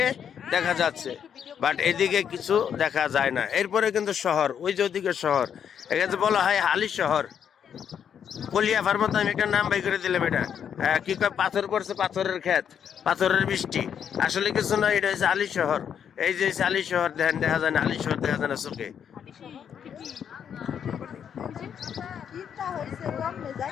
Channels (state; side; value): quieter; right; 8.2 dB